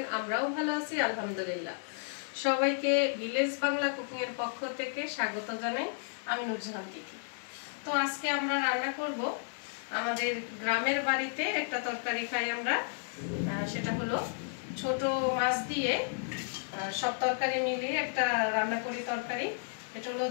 আমরাও ভালো আছি আলহামদুলিল্লাহ। সবাইকে ভিলেজ বাংলা কুকিং এর পক্ষ থেকে স্বাগত জানাই। আমি নুরজাহান তিথি। তো আজকে আমরা রান্না করব আমাদের গ্রামের বাড়িতে একটা তরকারি খাই আমরা, সেটা হলো ছোট মাছ দিয়ে সব তরকারি মিলিয়ে একটা রান্না করি তরকারি। এটা হলো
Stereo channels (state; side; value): silent; right; digital silence